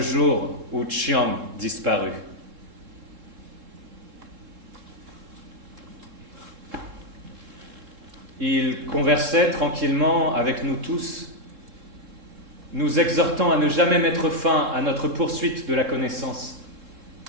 jour où Chiang disparut. Il conversait tranquillement avec nous tous, nous exhortant à ne jamais mettre fin à notre poursuite de la connaissance.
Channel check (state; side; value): late; left; 3.7 ms